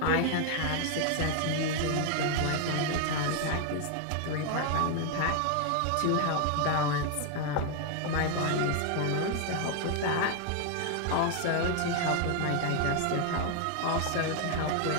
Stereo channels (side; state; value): both; different; correlation 0.00